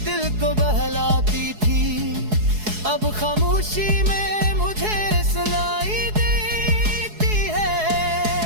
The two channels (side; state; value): left; late; 4.7 ms